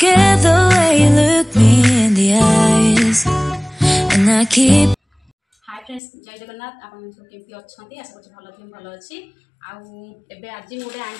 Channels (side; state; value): right; drops out; at 6.0 s